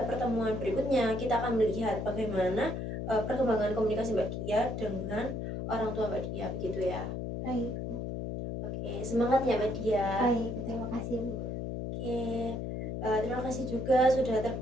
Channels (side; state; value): left; noise; hum, 4 dB below the sound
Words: pertemuan berikutnya kita akan melihat bagaimana perkembangan komunikasi Mbak Dia dengan orang tua Mbak Dia, begitu ya. Baik. Oke, semangat ya Mbak Dia. Baik, terima kasih Bu. Oke, terima kasih juga sudah